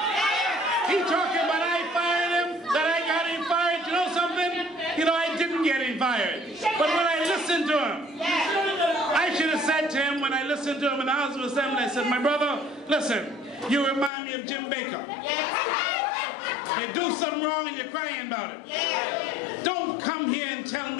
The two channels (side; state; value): right; drops out; at 14.1 s